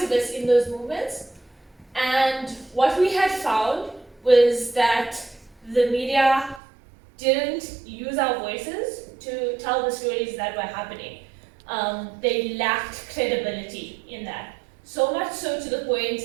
in those movements. And what we had found was that the media didn't use our voices to tell the stories that were happening. They lacked credibility in that. So much so to the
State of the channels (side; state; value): left; drops out; at 6.6 s